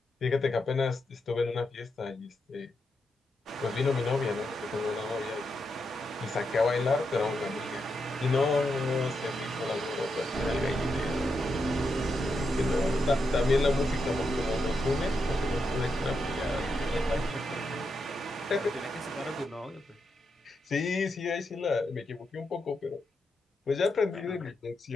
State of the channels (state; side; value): normal; both; correlation 0.84